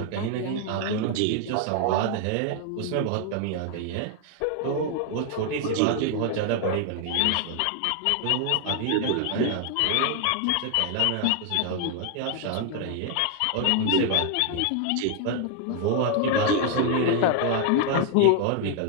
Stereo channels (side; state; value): both; different; correlation 0.00